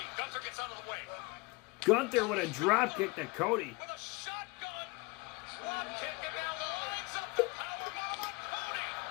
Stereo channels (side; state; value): right; quieter; 25.6 dB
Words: Gunther with a drop kick to Cody.